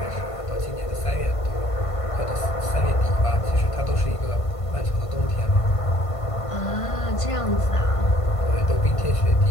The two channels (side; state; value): right; late; 1.5 ms